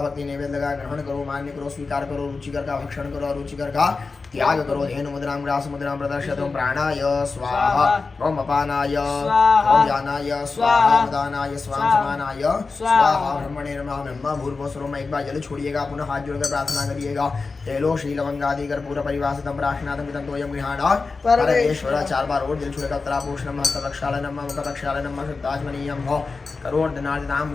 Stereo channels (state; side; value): quieter; right; 4.2 dB